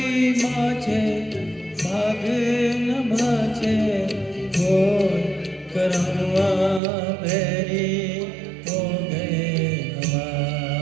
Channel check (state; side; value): drops out; left; at 6.8 s